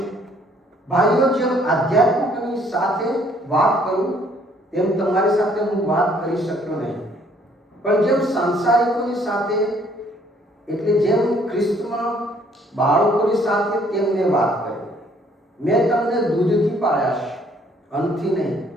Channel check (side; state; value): both; normal; correlation 0.63